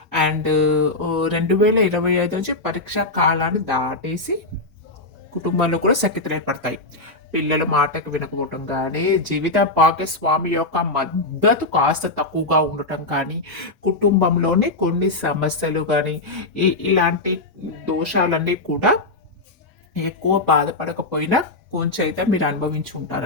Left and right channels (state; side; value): quieter; right; 3.0 dB